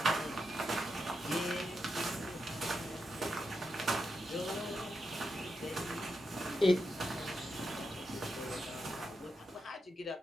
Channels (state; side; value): normal; both; correlation 0.86